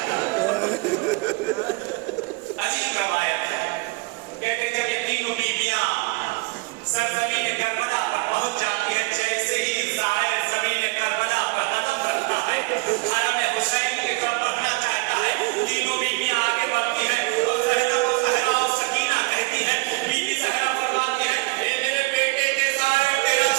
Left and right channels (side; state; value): left; quieter; 24.9 dB